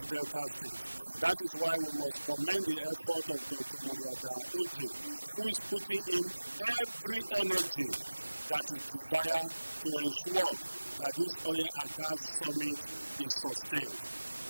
Delta State. That is why we must commend the effort of Dr. MUDIAGHA ODJE, who is putting in every energy that is desired to ensure that this oil and gas summit is sustained.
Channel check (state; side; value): inverted; both; correlation -1.00